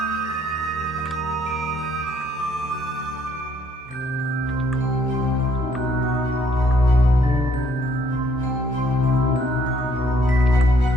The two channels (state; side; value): normal; both; correlation 0.66